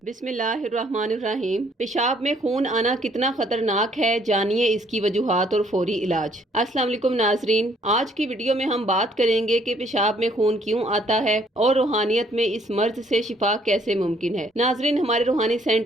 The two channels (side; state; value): both; normal; correlation 0.64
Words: بسم اللہ الرحمن الرحیم۔ پیشاب میں خون آنا کتنا خطرناک ہے، جانیے اس کی وجوہات اور فوری علاج۔ السلام علیکم ناظرین، آج کی ویڈیو میں ہم بات کریں گے کہ پیشاب میں خون کیوں آتا ہے اور روحانیت میں اس مرض سے شفا کیسے ممکن ہے۔ ناظرین، ہمارے روحانی